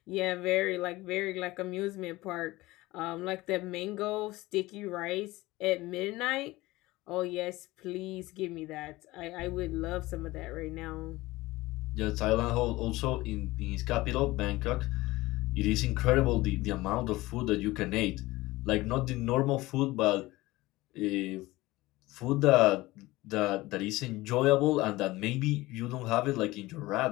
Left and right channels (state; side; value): quieter; right; 19.3 dB